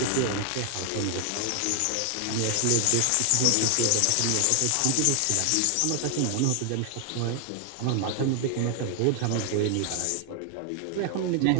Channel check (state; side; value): different; both; correlation 0.00